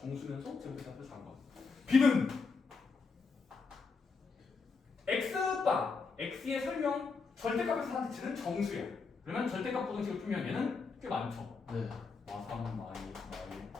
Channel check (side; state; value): right; quieter; 4.7 dB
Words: 제곱해서 작은 거. B는 X바, X의 설명, 절대값에서 선택지는 정수야. 그러면 절대값 부등식을 풀면 얘는 꽤 많죠. 네. 3, 말,